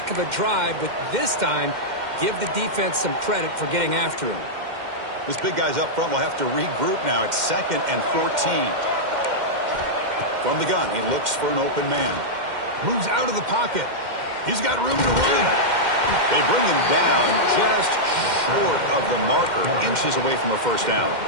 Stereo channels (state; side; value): late; left; 2.1 ms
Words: of a drive, but this time, give the defense some credit for getting after him. Those big guys up front will have to regroup now. It's 2nd and 14. From the gun, he looks for an open man. Moves out of the pocket. He's got room to run. They bring him down just short of the marker, inches away from a first down.